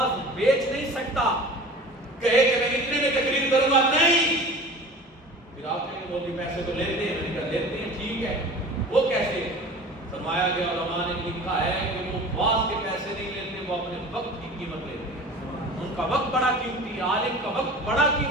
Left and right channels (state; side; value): normal; both; correlation 0.40